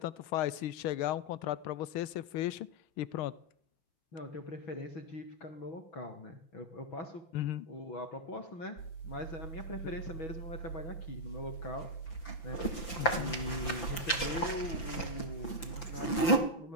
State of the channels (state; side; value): late; right; 5.9 ms